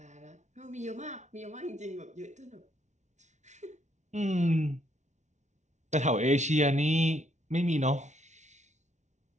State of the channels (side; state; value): left; late; 0.34 ms